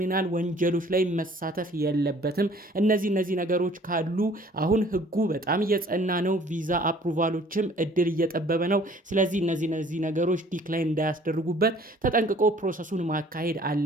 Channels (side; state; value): both; normal; correlation 0.54